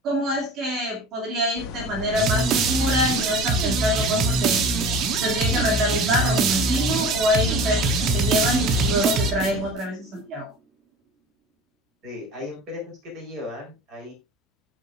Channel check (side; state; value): both; normal; correlation 0.38